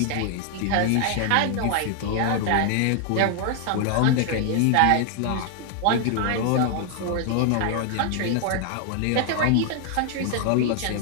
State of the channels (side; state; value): both; different; correlation 0.00